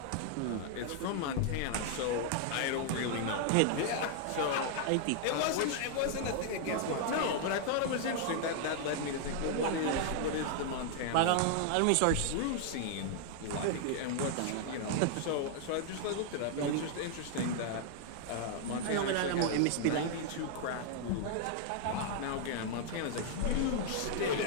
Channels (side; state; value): both; different; correlation 0.00